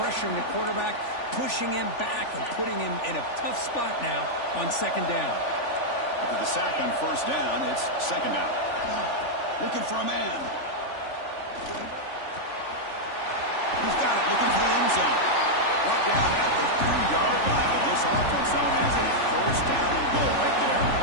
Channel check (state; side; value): late; right; 3.4 ms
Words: the quarterback, pushing him back and putting him in a tough spot now on 2nd down. After the sack on 1st down, it's 2nd down. Looking for a man. He's got it, looking for the end zone. Brought down at the 3-yard line, but this offense now has a 1st down and goal right there.